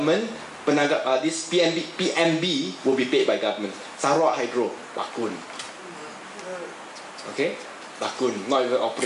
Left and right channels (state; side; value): identical; both; correlation 1.00